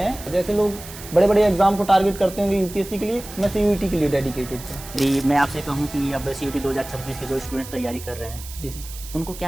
जैसे लोग बड़े बड़े एग्जाम को टारगेट करते होंगे यूपीएससी के लिए, मैं सीयूईटी के लिए डेडिकेटेड था। जी, मैं आपसे कहूँ कि अब सीयूईटी 2026 के जो स्टूडेंट्स तैयारी कर रहे हैं, जी सर, उनको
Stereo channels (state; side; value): noise; right; hiss, 14 dB below the sound